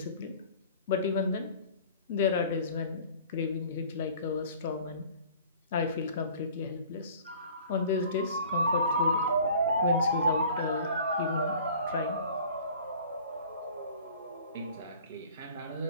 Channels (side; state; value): both; inverted; correlation -0.48